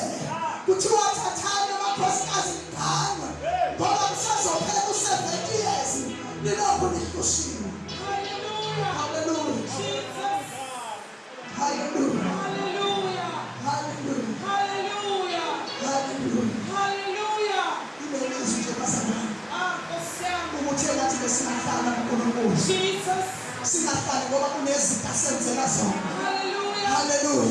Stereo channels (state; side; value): identical; both; correlation 1.00